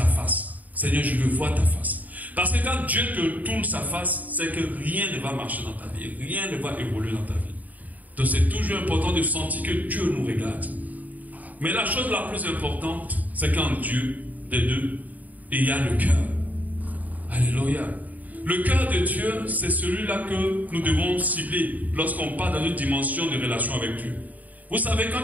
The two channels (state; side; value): late; left; 0.077 ms